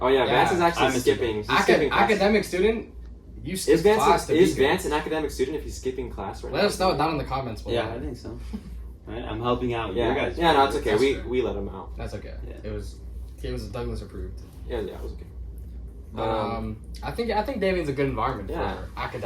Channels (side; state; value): both; identical; correlation 1.00